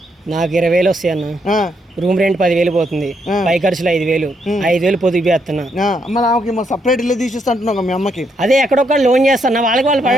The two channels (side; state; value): both; normal; correlation 0.76